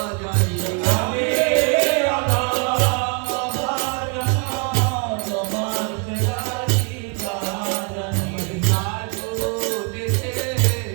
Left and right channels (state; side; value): quieter; left; 37.8 dB